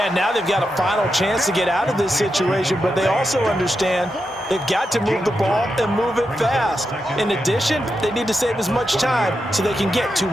now they've got a final chance to get out of this situation, but they also understand they've got to move the ball and move it fast. In addition, they need to save as much time so they can get 2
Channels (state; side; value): normal; both; correlation 0.87